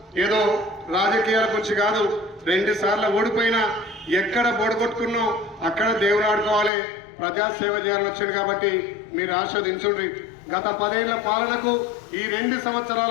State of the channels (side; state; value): right; drops out; at 6.7 s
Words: ఏదో రాజకీయాల గురించి కాదు. 2 సార్లు ఓడిపోయినా ఎక్కడ బోడగొట్టుకున్నాం అక్కడ దేవుడు ఆడుకోవాలి, ప్రజాసేవ చేయాలని వచ్చింది. కాబట్టి మీరు ఆస్వాదించుండ్రి. గత 10 ఏళ్ల పాలనకు ఈ 2